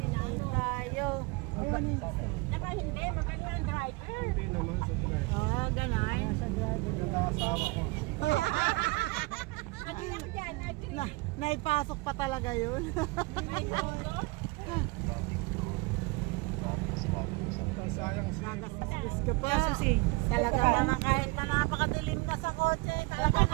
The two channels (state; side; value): quieter; left; 25.0 dB